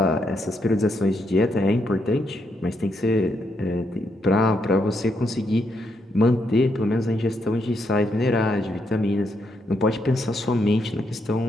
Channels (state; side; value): normal; both; correlation 0.78